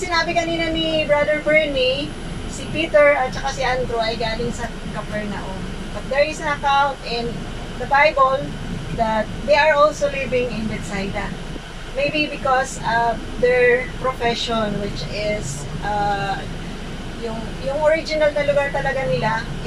kanina ni Brother Bernie, si Peter at saka si Andrew ay galing sa Capernaum. But there is an account in the Bible that they are also living in Bethsaida. Maybe because of their profession, which is yung original na lugar talaga nila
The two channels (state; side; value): identical; both; correlation 1.00